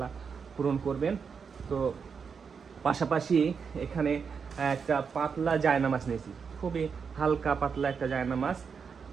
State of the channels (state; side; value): quieter; left; 6.0 dB